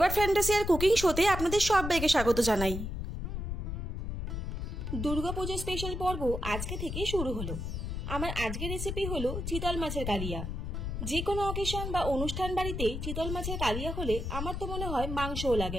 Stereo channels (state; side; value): noise; left; rumble, 4 dB below the sound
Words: fantasy और कुकिंग शोते आपनादेर सबाइके स्वागत जानाई। दुर्गापूजा स्पेशल पर्व आज के थेके शुरू हलो। आमार आजकेर रेसिपि हलो चितल माछेर कालिया। जे कोनो अकेशन बा अनुष्ठान बाड़ीते चितल माछेर कालिया होले आमार तो मने हय मांसও